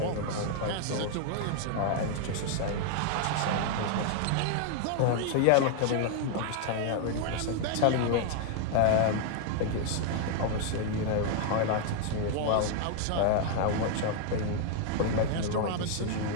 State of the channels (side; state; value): both; different; correlation 0.00